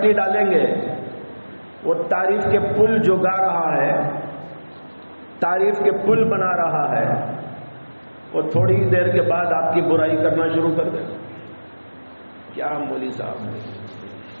ڈالیں گے وہ تعریف کے پل جو گا رہا ہے، تعریف کے پل بنا رہا ہے، وہ تھوڑی دیر کے بعد آپ کی برائی کرنا شروع کر دے. کیا مولوی صاحب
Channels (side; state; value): both; inverted; correlation -1.00